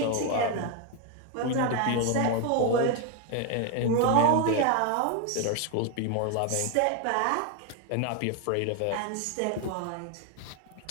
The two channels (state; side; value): different; both; correlation 0.01